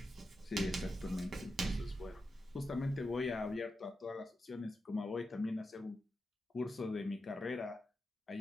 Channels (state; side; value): normal; both; correlation 0.88